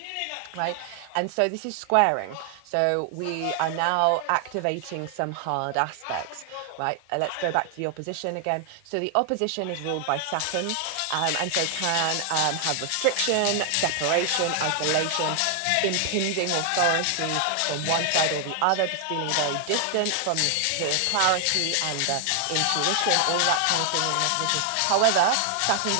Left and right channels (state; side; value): different; both; correlation 0.00